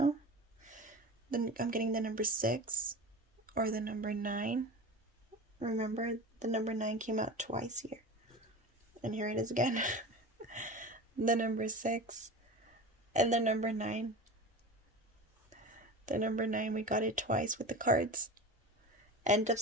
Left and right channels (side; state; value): both; normal; correlation 0.32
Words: Then I'm getting the number 6 or the number 9. Remember, the number 9 came out twice here. And here it is again. The number 6 and the number 9. The number 9, we got it twice with the cards. End of